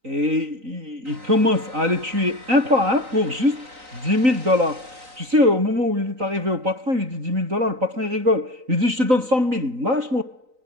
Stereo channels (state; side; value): late; left; 3.9 ms